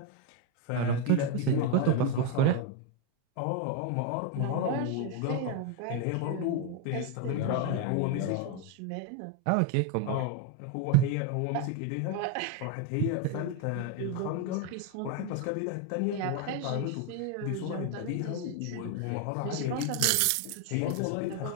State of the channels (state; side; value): different; both; correlation 0.02